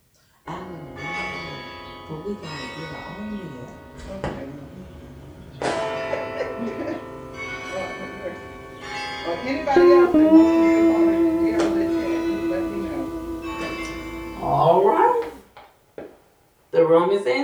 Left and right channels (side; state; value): both; identical; correlation 1.00